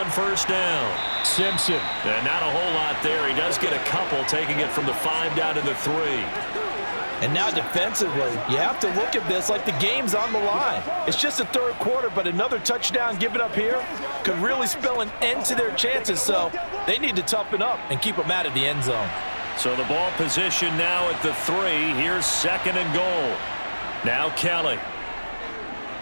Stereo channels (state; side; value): inverted; both; correlation -1.00